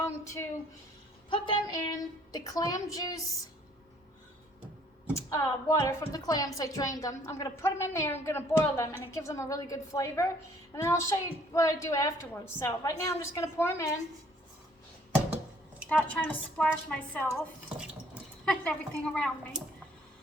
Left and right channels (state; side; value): normal; both; correlation 0.61